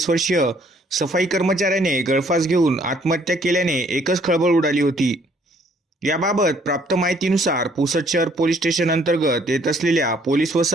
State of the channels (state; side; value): normal; both; correlation 0.63